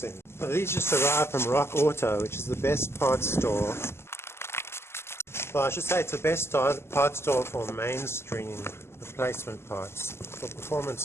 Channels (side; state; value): right; late; 0.12 ms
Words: Well, these just arrived from Rock Auto, which is the best parts store. Well, I should say it's the best parts store for mainstream replacement parts. For